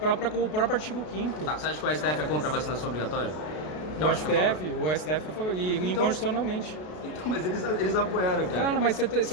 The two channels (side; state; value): right; late; 33 ms